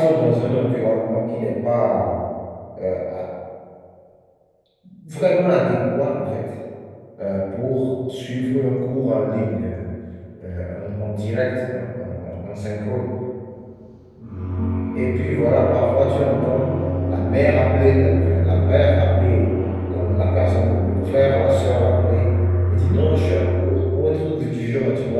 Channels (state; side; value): identical; both; correlation 1.00